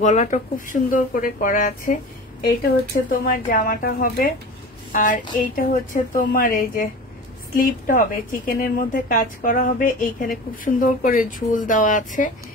গলাটা খুব সুন্দর করে করা আছে। এইটা হচ্ছে তোমার জামাটা হবে, আর এইটা হচ্ছে তোমার এই যে স্লিপটা হবে, চিকেনের মধ্যে কাজ করা হবে, এইখানে খুব সুন্দর করে ঝুল দেওয়া আছে।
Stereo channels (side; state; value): both; normal; correlation 0.35